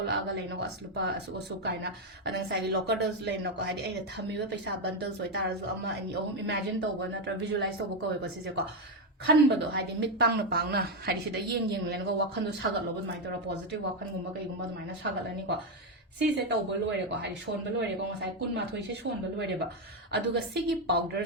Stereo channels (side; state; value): both; normal; correlation 0.05